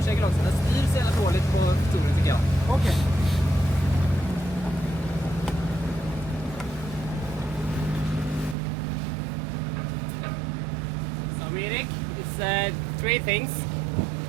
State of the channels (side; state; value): left; drops out; at 8.6 s